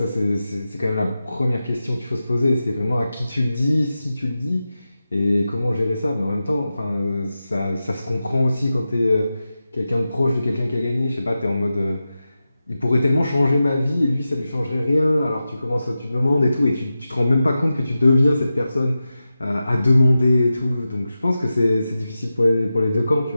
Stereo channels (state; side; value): inverted; both; correlation -0.93